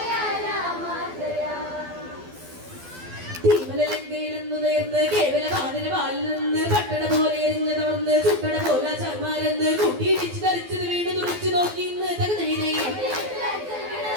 തീമലങ്കയിലെന്നു നേർന്ന് കേവല വാനര വാലിൽ നിന്ന് പട്ടണ പോലെ എരിഞ്ഞ് തവർന്ന് ചുട്ടട പോല ചർമാരെന്ന് കൂട്ടിയിടിച്ച് ധരിച്ചത് വീണ് തുറച്ചു നോക്കി ഇന്ന് തകതൈതൈ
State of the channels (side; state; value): left; late; 12 ms